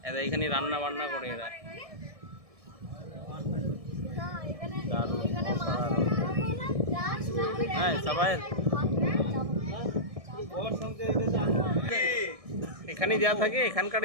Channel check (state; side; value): late; left; 1.6 ms